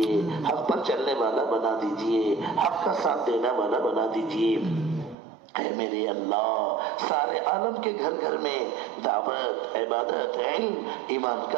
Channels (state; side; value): drops out; left; at 5.2 s